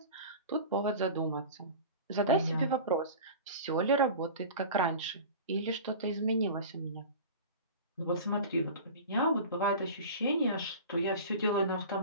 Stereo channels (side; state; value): both; inverted; correlation -0.35